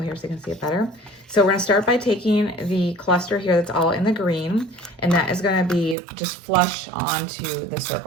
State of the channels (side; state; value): left; drops out; at 6.0 s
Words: here so you can see it better. So we're going to start by taking the cluster here that's all in the green, and that is going to be just flush onto the